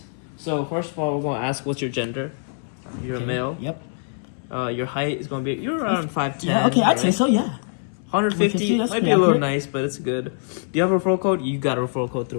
So first of all, we're gonna ask what's your gender. You're a male. Yep. Your height is gonna be you're around 5'10". Yeah, okay, I'd say so, yeah. 150 that's might be pretty a little accurate. nice, but it's good. Do you have a referral code? You got a referral code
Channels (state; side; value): silent; right; 63 dB below the other